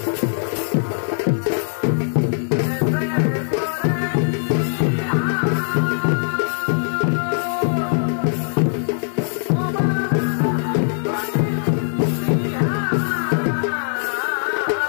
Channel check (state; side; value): silent; right; digital silence